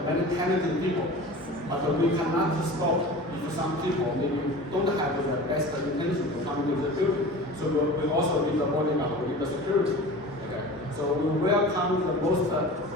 many talented people, but we cannot stop if some people maybe don't have the best intention to come into the building. So we also need the bodyguard, we need the security. Okay? So we welcome the most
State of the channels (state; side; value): normal; both; correlation 0.36